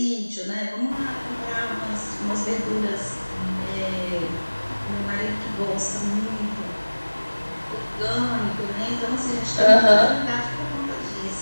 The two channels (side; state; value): both; inverted; correlation -1.00